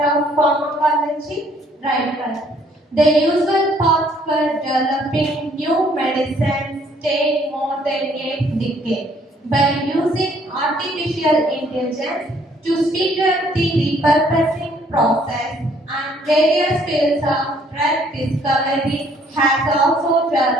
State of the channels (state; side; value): normal; both; correlation 0.63